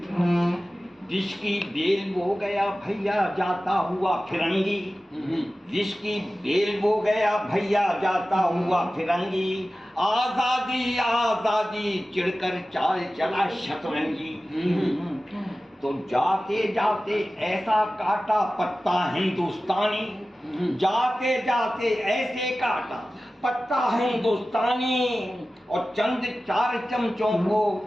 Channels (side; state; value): both; normal; correlation 0.96